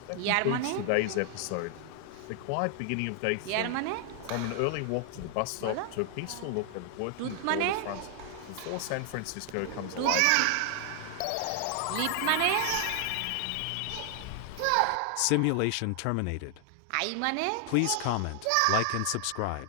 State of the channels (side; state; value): both; different; correlation 0.00